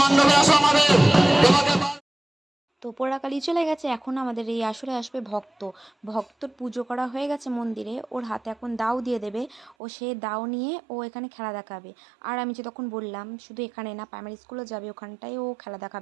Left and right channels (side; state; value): left; drops out; at 9.8 s